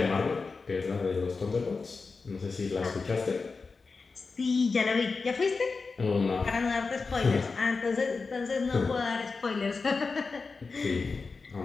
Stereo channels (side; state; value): right; quieter; 4.4 dB